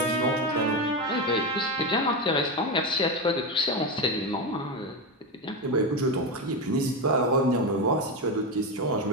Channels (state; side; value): normal; both; correlation 0.14